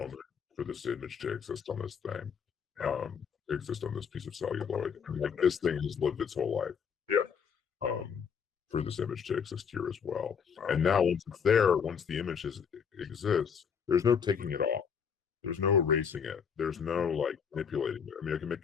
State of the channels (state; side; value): quieter; right; 6.8 dB